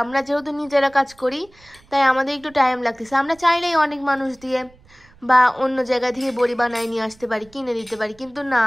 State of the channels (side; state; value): right; noise; rumble, 28 dB below the sound